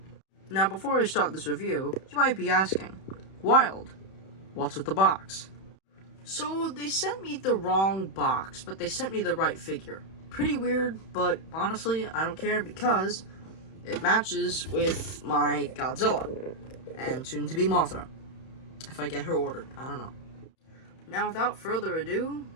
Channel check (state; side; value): late; right; 31 ms